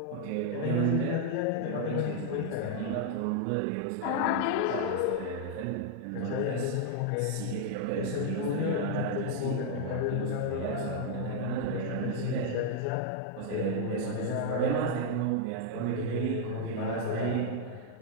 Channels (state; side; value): different; both; correlation -0.01